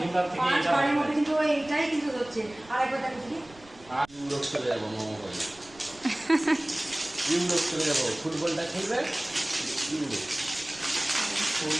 এইবার থেকে 5 এটা বারের মধ্যে হবে। কিন্তু ও এইটাই কিন্তু হচ্ছে। আর একবার দেখো দেখি ইউরোপ চলে যাবো মোমো করে, ইউরোপ চলে যাবো, ফুটবলটা খেলবে ইউরোপ।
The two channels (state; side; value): noise; right; rumble, 24 dB below the sound